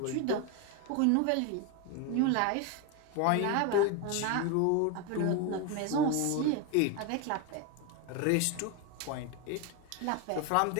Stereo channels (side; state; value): both; different; correlation 0.02